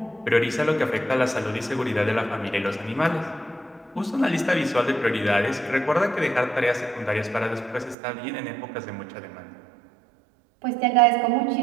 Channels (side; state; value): left; drops out; at 8.0 s